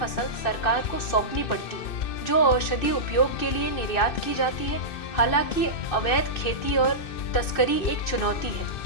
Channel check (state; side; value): late; right; 2.6 ms